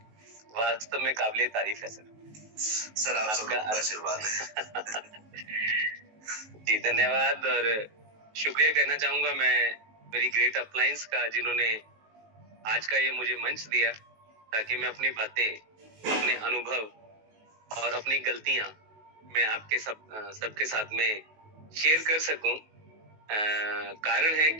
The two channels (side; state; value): left; late; 19 ms